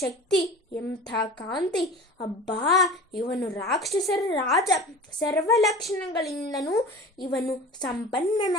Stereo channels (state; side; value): normal; both; correlation 0.37